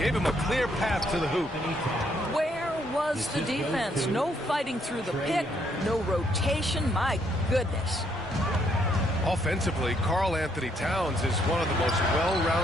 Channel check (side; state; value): both; normal; correlation 0.71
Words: him a clear path to the hoop. Where was the defense? No fighting through the pick, no rotation. My goodness. Offensively, Karl Anthony Towns is one of the most